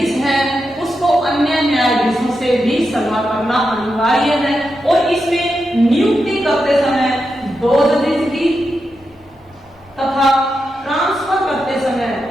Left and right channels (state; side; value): normal; both; correlation 0.87